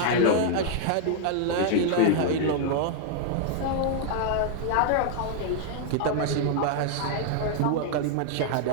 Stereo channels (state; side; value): different; both; correlation 0.00